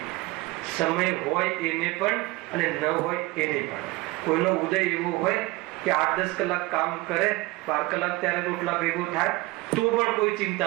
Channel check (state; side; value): quieter; left; 21.4 dB